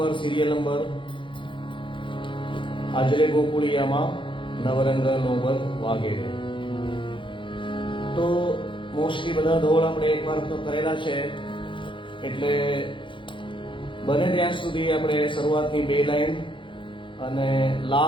સિરિયલ નંબર આજરે ગોકુળિયામાં નવરંગ નોબત વાગેરે. તો મોસ્ટલી બધા ધોળ આપણે એકવાર તો કરેલા છે, એટલે બને ત્યાં સુધી આપણે શરૂઆતની 2 લાઈન અને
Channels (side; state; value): right; late; 0.24 ms